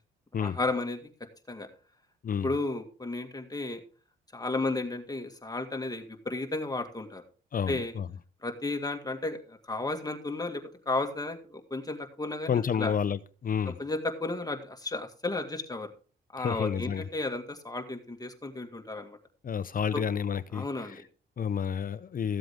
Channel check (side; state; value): right; quieter; 4.1 dB